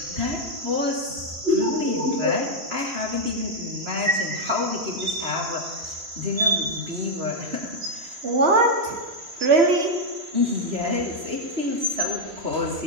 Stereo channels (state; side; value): late; left; 3.0 ms